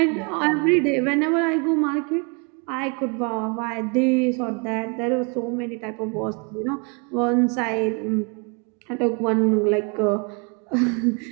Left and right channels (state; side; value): quieter; left; 33.6 dB